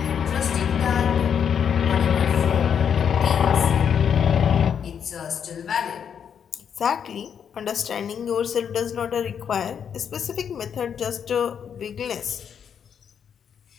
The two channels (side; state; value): right; quieter; 7.8 dB